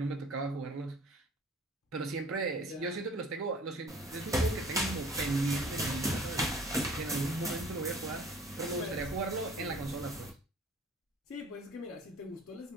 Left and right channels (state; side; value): normal; both; correlation 0.50